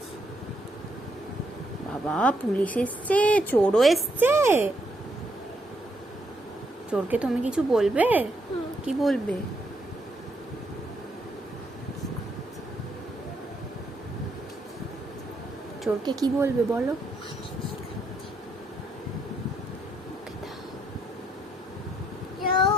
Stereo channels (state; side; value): normal; both; correlation 0.75